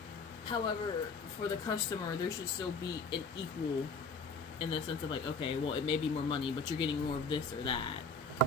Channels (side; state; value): right; quieter; 3.7 dB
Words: However, for the customer, there should still be an equal, in the sense of like, okay, well, it may be more money, but you're getting more of this or that.